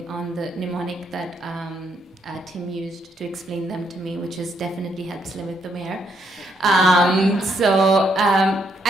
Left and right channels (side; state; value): both; normal; correlation 0.74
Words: on the mnemonic that Tim used to explain them to me, which has definitely helped limit the mayor. I